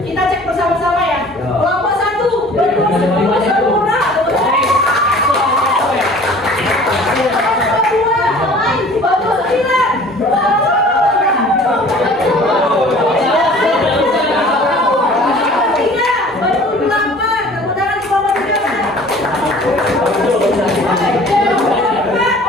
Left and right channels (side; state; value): both; normal; correlation 0.48